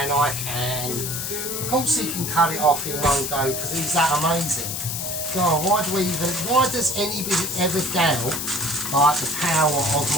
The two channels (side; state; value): left; noise; hiss, 4 dB below the sound